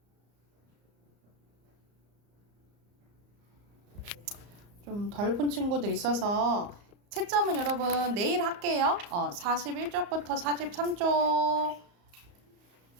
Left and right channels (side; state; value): left; late; 34 ms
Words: 좀 덜 푼 친구들 있어서 채점은 여러분 내일 할게요. 41쪽부터 43쪽